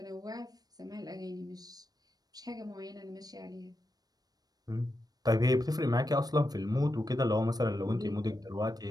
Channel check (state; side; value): late; left; 0.19 ms